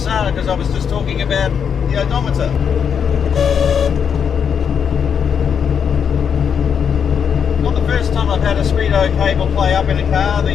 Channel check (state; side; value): quieter; right; 7.3 dB